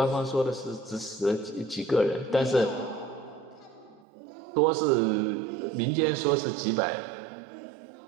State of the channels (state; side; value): drops out; left; at 4.0 s